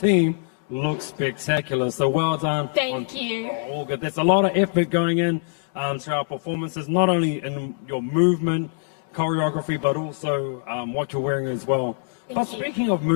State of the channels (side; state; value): right; silent; digital silence